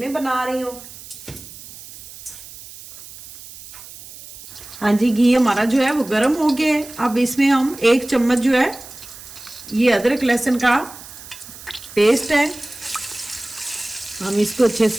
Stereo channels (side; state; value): right; noise; hiss, 16 dB below the sound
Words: बना रही हूँ। हाँ जी, घी हमारा जो है वो गर्म हो गया है। अब इसमें हम 1 चम्मच जो है ये अदरक लहसुन का पेस्ट है, हम इसको अच्छे